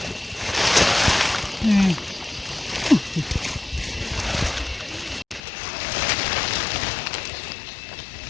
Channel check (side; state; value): right; drops out; at 5.4 s